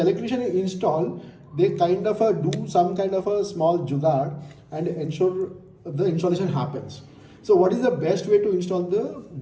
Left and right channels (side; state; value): both; identical; correlation 1.00